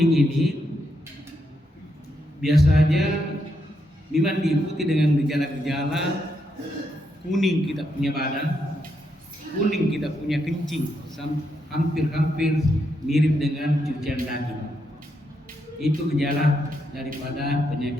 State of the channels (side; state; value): both; normal; correlation 0.80